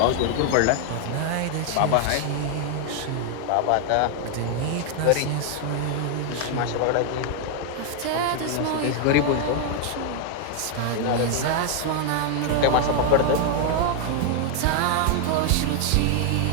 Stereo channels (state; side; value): different; both; correlation 0.00